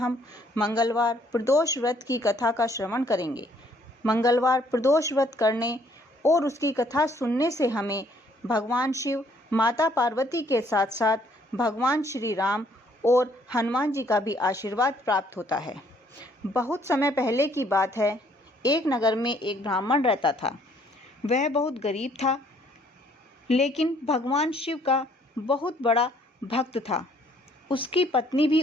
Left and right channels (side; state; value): both; normal; correlation 0.64